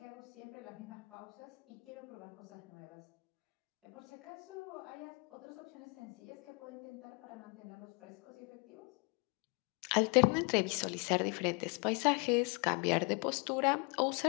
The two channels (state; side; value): quieter; right; 32.3 dB